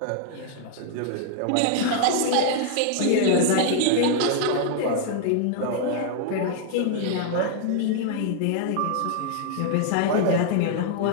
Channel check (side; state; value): both; different; correlation -0.01